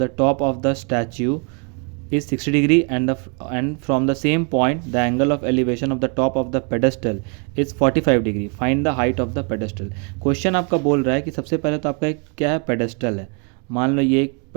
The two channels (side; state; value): left; quieter; 36.8 dB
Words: top of the statue is 60 degree and from the same point the angle of elevation of the top of the pedestal is 45 degree. Find the height of the pedestal. Question आपका बोल रहा है कि सबसे पहले तो आपका क्या है, पेडेस्टल है। मान लो ये एक